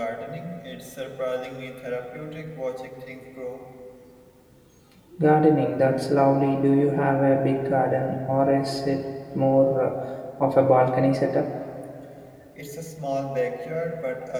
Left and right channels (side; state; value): both; identical; correlation 1.00